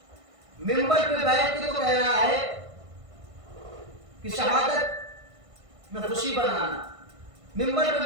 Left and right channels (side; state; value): left; late; 1.5 ms